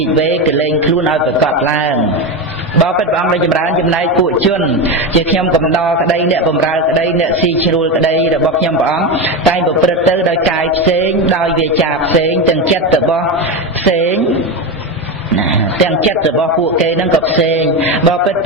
ិវេកលែងខ្លួនឲ្យប្រកបឡើងបបិទ្ធព្រះអង្គដ៏ចម្រើនចំណែកពួកជនជាខ្ញុំកំដរក្តីអ្នកបម្រើក្តីអ្នកស៊ីជ្រួលក្តីរបស់ខ្ញុំព្រះអង្គតែងប្រព្រឹត្តទៅដោយកាយផ្សេងដោយវាចាផ្សេងទាំងចិត្តរបស់ផ្សេងទាំងចិត្តរបស់ពួកគេនឹងក៏ផ្សេងបបិទ្ធព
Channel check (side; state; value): both; normal; correlation 0.16